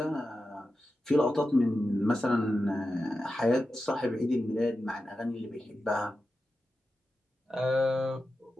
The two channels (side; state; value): both; normal; correlation 0.91